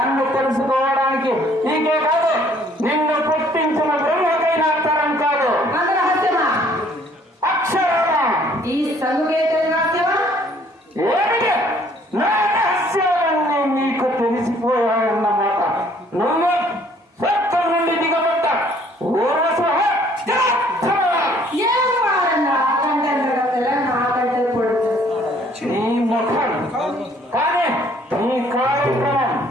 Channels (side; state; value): both; normal; correlation 0.60